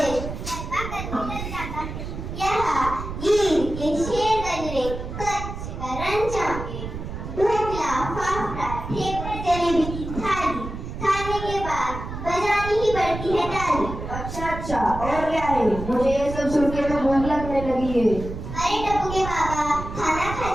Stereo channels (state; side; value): noise; right; rumble, 8 dB below the sound